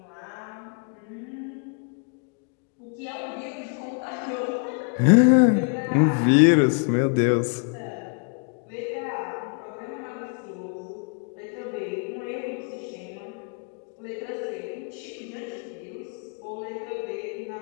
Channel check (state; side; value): quieter; right; 38.0 dB